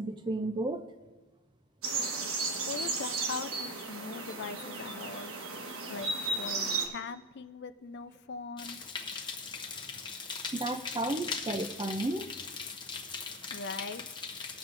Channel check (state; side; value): normal; both; correlation 0.21